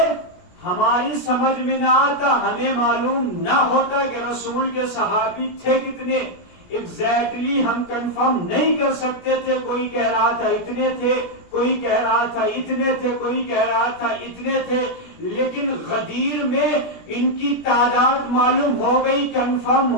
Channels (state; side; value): late; right; 17 ms